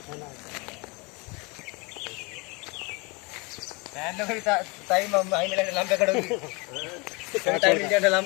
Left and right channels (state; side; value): quieter; right; 28.0 dB